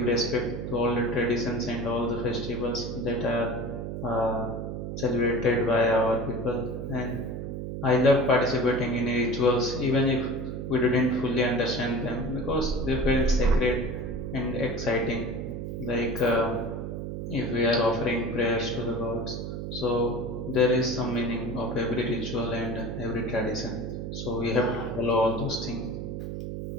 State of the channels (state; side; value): noise; right; hum, 5 dB below the sound